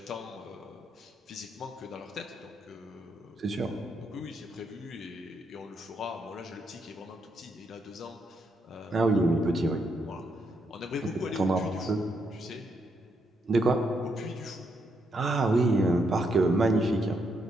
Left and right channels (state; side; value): normal; both; correlation 0.78